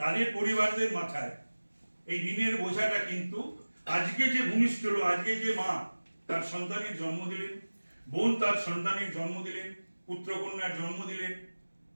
পরিবারদের মাথায় এই ঋণের বোঝাটা কিন্তু আজকে যে ভূমিষ্ঠ হলো, আজকে যে মা তার সন্তানের জন্ম দিলেন, বোন তার সন্তানের জন্ম দিলেন, পুত্রকন্যার জন্ম দিলেন,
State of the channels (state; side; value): inverted; both; correlation -1.00